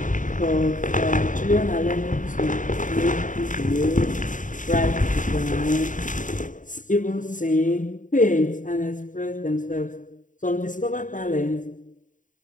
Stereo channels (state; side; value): late; right; 0.38 ms